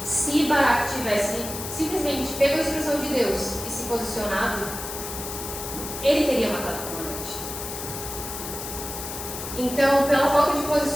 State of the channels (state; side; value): noise; left; hiss, 8 dB below the sound